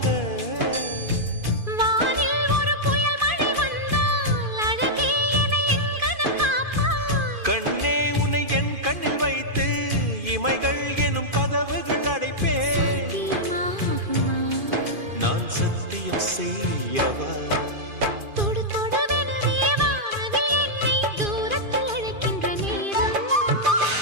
வானில் ஒரு புயல் மழை வந்தால் அழகே என்னை எங்கனம் காப்பாய். கண்ணே உன்னை என் கண்ணில் வைத்து இமைகள் எனும் கதவுகள் அடைப்பேன். நான் சத்தியம் செய்யவா? தொடு தொடுவெனவே வானவில் என்னை தூரத்தில் அழைக்கின்ற நேரம்.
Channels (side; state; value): left; late; 2.5 ms